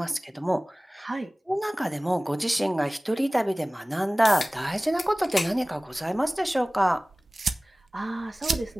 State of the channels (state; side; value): normal; both; correlation 0.98